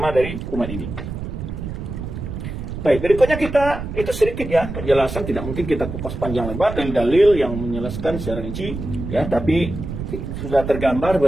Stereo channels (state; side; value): noise; right; rumble, 7 dB below the sound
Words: dari umat ini. Baik, berikutnya kita, itu sedikit ya penjelasan, tidak mungkin kita kupas panjang lebar dari dalil yang menjelaskan secara rinci, ya, tapi sudah tergambar